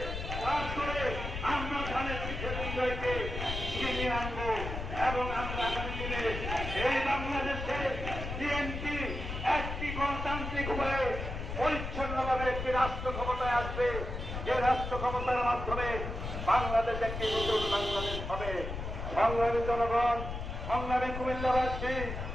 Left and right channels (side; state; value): left; noise; rumble, 6 dB below the sound